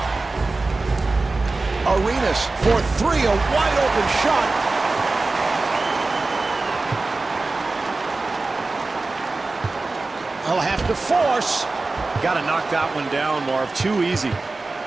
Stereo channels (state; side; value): quieter; left; 3.5 dB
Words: Arenas for 3, a wide open shot. He'll have to force. Got to knock that one down, Marv. Too easy.